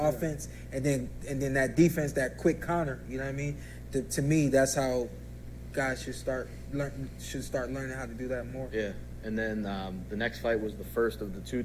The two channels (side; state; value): both; identical; correlation 1.00